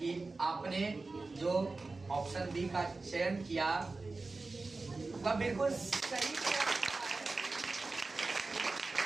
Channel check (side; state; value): left; quieter; 3.6 dB